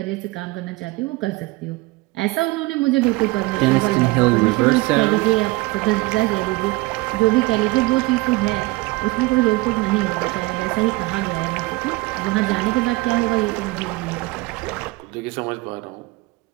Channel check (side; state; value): left; quieter; 22.6 dB